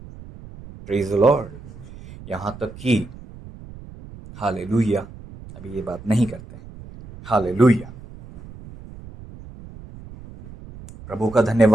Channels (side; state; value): right; noise; rumble, 17 dB below the sound